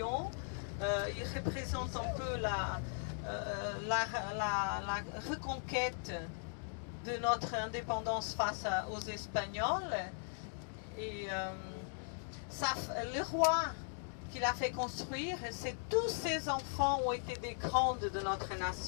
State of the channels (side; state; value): right; silent; digital silence